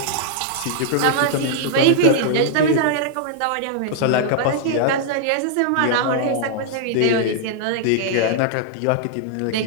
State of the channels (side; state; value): both; different; correlation -0.01